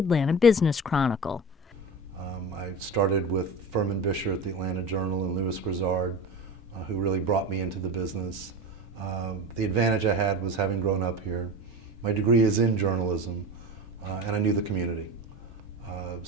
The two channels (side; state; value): both; normal; correlation 0.29